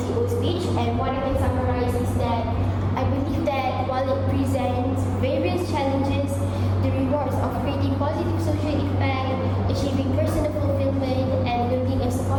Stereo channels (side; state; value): both; identical; correlation 1.00